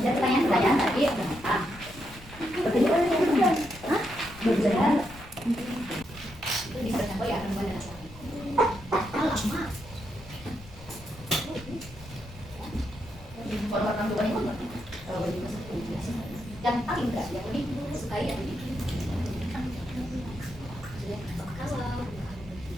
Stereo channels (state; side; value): noise; left; rumble, 19 dB below the sound